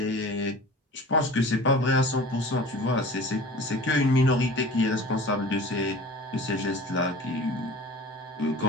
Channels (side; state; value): both; normal; correlation 0.41